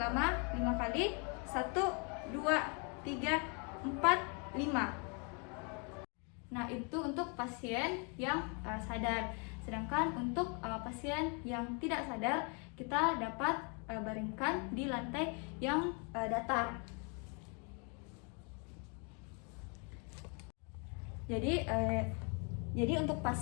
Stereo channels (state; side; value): quieter; right; 35.7 dB